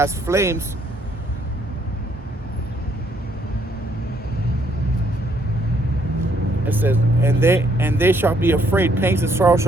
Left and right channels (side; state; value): both; normal; correlation 0.69